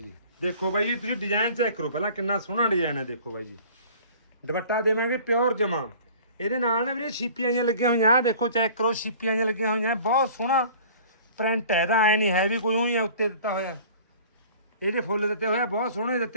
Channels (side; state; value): both; inverted; correlation -0.47